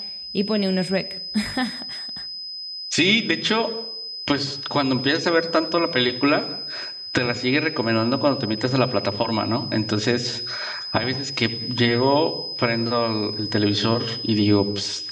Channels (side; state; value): both; identical; correlation 1.00